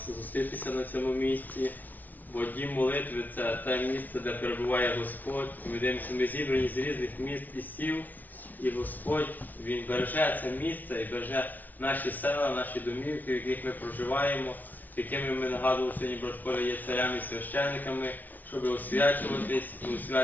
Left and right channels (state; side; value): late; right; 0.081 ms